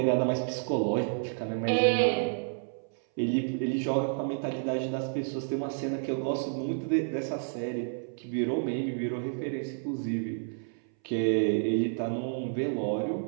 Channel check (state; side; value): silent; left; 58 dB below the other